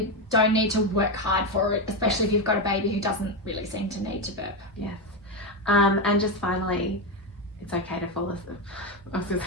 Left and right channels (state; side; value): normal; both; correlation 0.10